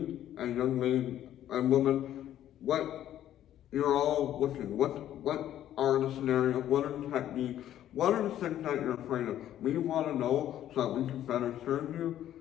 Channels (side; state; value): right; quieter; 11.8 dB